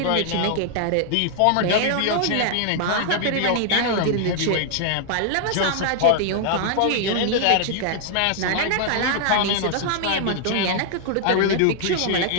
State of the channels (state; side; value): different; both; correlation 0.00